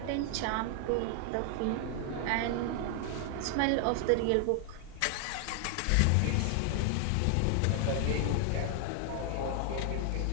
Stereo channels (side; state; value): both; different; correlation 0.00